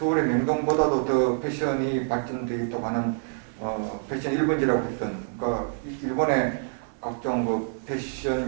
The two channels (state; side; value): silent; left; 58 dB below the other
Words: 명동보다도 더 패션이 발전되어 있다고 하는 패션 1번지라고 했던, 그러니까 일본의 각종 그